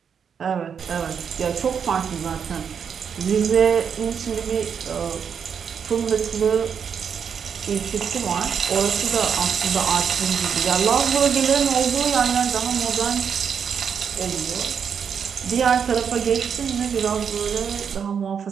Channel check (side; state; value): left; quieter; 7.1 dB